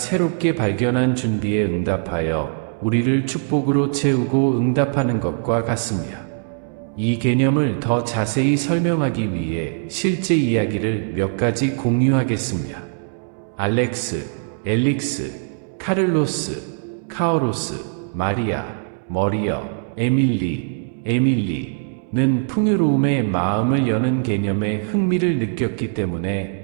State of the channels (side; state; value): left; silent; 65 dB below the other